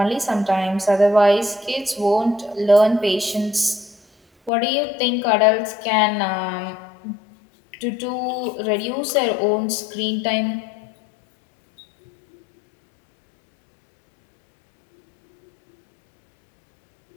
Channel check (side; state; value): right; drops out; at 4.5 s